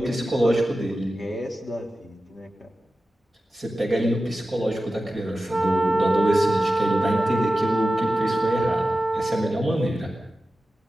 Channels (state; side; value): normal; both; correlation 0.94